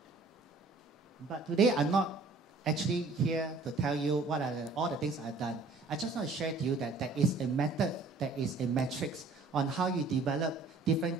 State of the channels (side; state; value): left; quieter; 3.7 dB